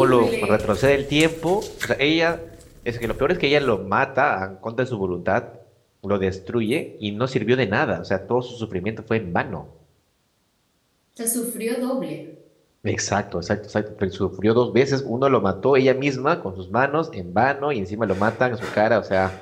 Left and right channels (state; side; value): identical; both; correlation 1.00